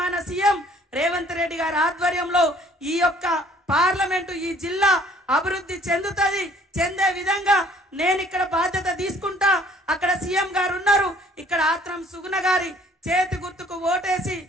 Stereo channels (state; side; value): normal; both; correlation 0.58